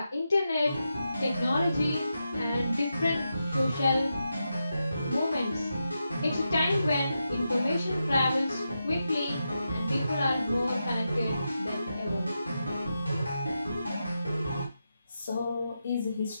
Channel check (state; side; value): inverted; both; correlation -0.87